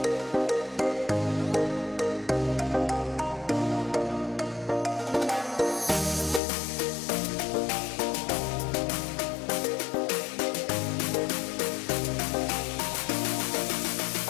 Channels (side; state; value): right; drops out; at 6.4 s